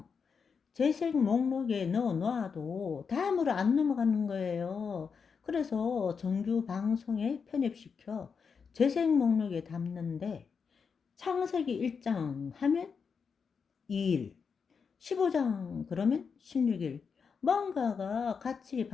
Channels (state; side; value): quieter; right; 5.9 dB